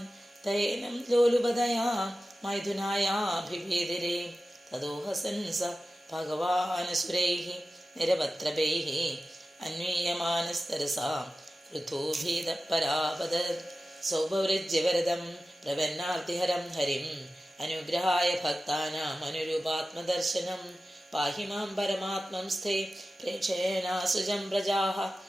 തയേനം ലോലുപതയാ മൈഥുനായാഭിവേദിരേ തദോഹസൻ സ ഭഗവാനസുരൈഃ നിരപത്രപൈഃ അന്വീയമാനസ്തരസാ പൃഥോഭീതപരാപദർ സൗഭവൃജ്യവരദം പ്രപന്നാർത്തിഹരം ഹരിം അനുഗ്രഹായ ഭക്താനാം അനുരൂപാത്മദർശനം പാഹി മാം പരമാത്മം സ്ഥേ പ്രേക്ഷേണാസുജം പ്രജാഃ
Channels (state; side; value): normal; both; correlation 0.94